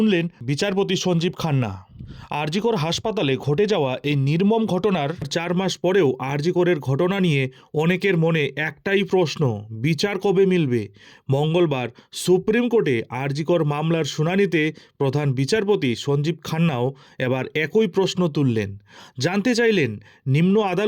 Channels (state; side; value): identical; both; correlation 1.00